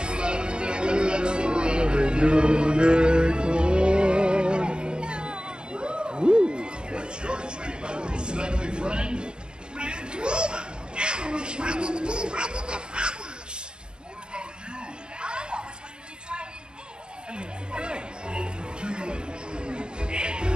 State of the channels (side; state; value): left; late; 0.050 ms